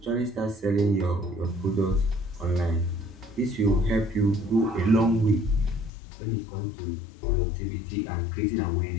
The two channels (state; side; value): drops out; right; at 5.9 s